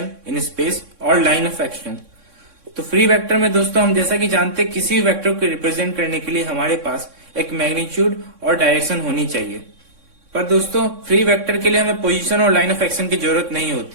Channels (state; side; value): late; left; 3.6 ms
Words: in space और लाइन ऑफ एक्शन। तो फ्री वेक्टर में दोस्तों हम जैसा कि जानते हैं, किसी भी वेक्टर को रिप्रेजेंट करने के लिए हमारे पास एक मैग्नीट्यूड और डायरेक्शन होनी चाहिए। पर दोस्तों फ्री वेक्टर के लिए हमें पोजीशन और लाइन ऑफ एक्शन की जरूरत नहीं